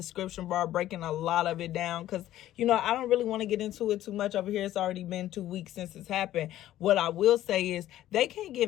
bar, breaking a lot of it down because, I don't really want to get into it too much over here. It's already been 2 weeks since it's happened. What I will say is they can't get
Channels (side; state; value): right; quieter; 13.5 dB